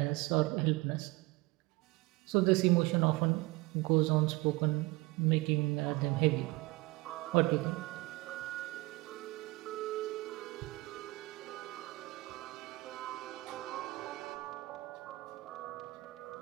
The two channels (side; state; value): left; quieter; 22.5 dB